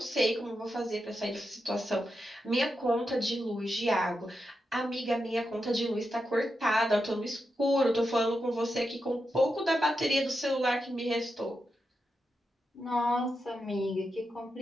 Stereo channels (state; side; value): normal; both; correlation 0.87